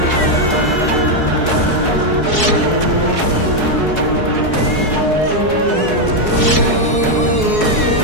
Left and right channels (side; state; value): right; late; 4.7 ms